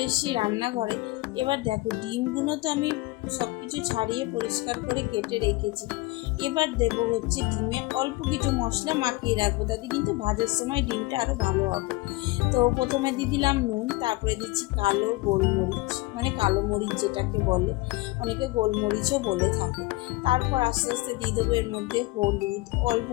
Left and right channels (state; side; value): quieter; right; 21.5 dB